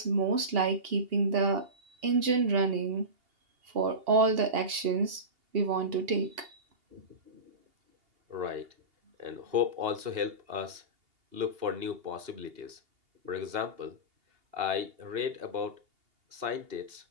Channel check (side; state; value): left; late; 2.8 ms